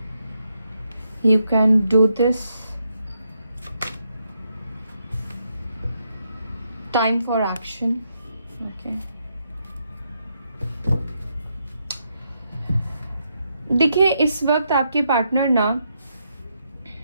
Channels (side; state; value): both; inverted; correlation -0.79